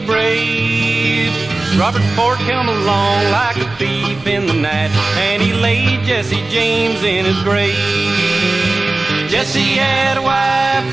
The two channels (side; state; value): left; quieter; 3.1 dB